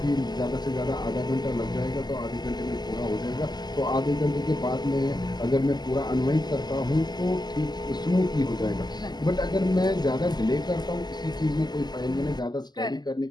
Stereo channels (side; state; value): right; late; 0.20 ms